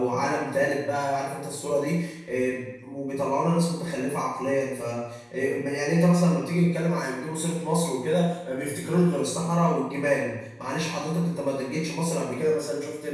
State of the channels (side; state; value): both; identical; correlation 1.00